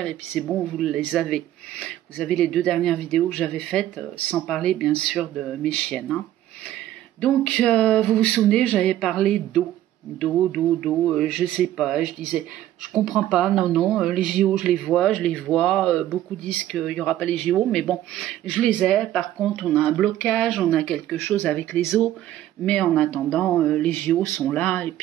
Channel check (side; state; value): left; quieter; 13.0 dB